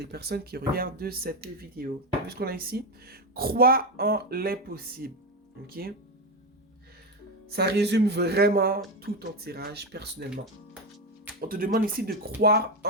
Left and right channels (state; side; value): normal; both; correlation 0.12